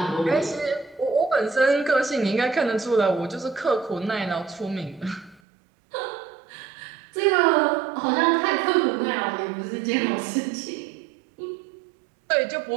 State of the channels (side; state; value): left; drops out; at 5.4 s